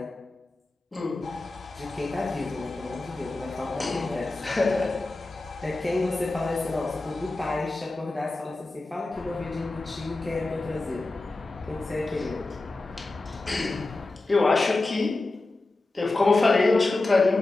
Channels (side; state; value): right; quieter; 3.1 dB